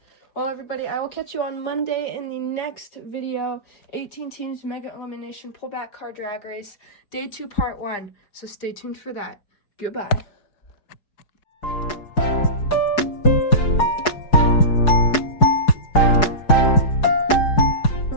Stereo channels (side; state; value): right; late; 4.7 ms